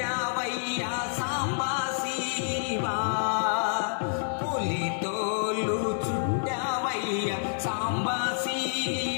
సాంబా శివా. పులితోలు చుట్టావయ్య సాంబా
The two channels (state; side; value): silent; right; digital silence